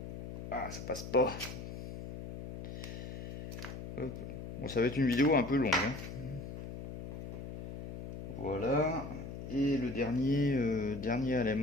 Ah, ça passe pas. Hop. Bon, ça va être une vidéo un peu longue. Hein. Voilà. Et le dernier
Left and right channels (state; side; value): noise; left; hum, 9 dB below the sound